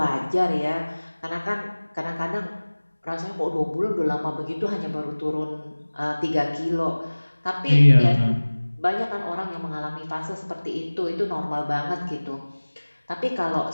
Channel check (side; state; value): both; inverted; correlation -1.00